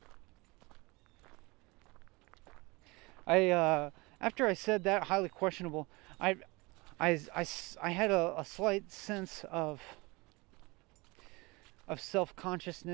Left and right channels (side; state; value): left; quieter; 24.7 dB